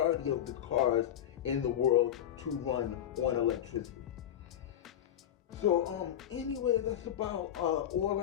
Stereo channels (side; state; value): right; quieter; 10.6 dB